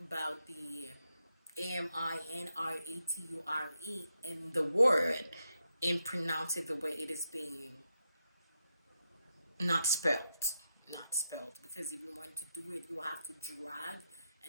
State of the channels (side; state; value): both; inverted; correlation -0.85